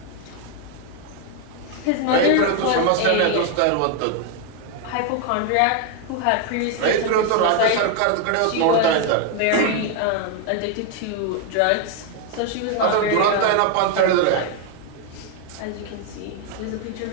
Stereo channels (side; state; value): both; different; correlation 0.01